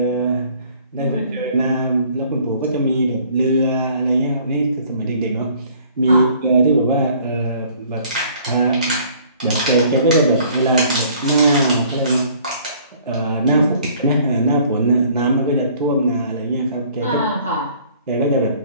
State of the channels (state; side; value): inverted; both; correlation -0.56